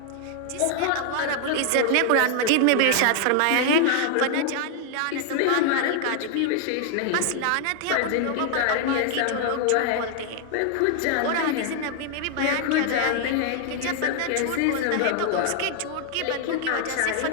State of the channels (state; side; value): different; both; correlation 0.00